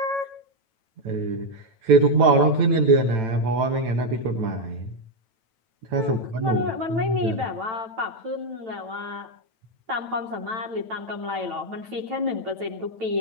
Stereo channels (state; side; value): late; left; 9.0 ms